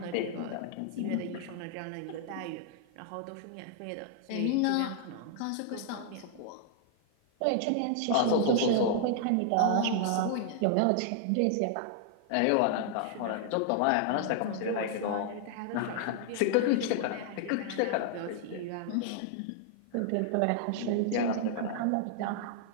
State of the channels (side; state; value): both; different; correlation 0.00